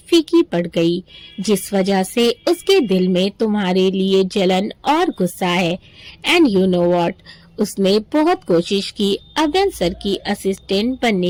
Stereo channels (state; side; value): identical; both; correlation 1.00